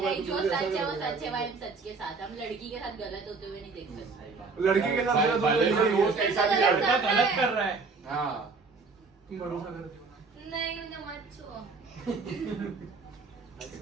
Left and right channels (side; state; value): left; quieter; 4.3 dB